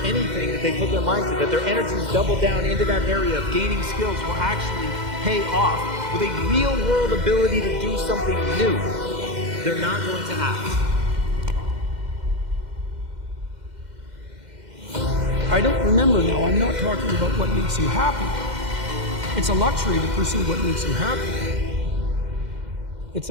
anything that they put their mind to, that their energies double down into that area of gaining skills will actually pay off with a real world ability to do something new. They're not going to act. I don't remember now, I'm not talking about what makes you happy. It's a luxury to pursue what makes you happy. It's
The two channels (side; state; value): left; late; 2.1 ms